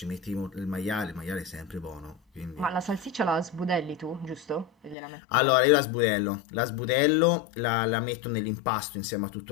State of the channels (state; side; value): drops out; right; at 5.0 s